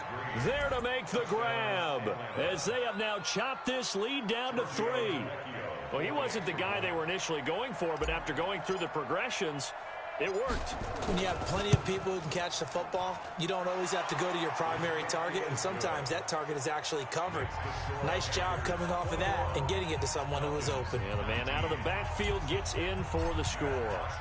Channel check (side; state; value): both; identical; correlation 1.00